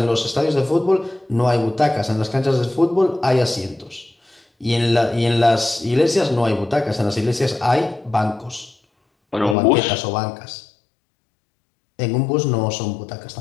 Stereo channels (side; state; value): right; drops out; at 9.6 s